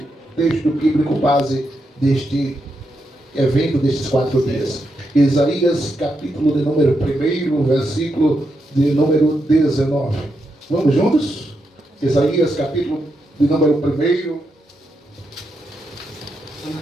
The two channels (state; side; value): normal; both; correlation 0.83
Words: texto bíblico base deste evento, destes 4 dias. Isaías, capítulo de número 1, versículo de número 19. Vamos juntos? Isaías, capítulo de número 1,